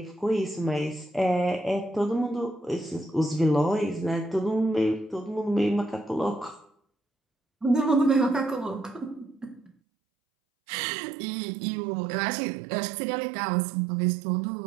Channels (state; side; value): drops out; left; at 9.7 s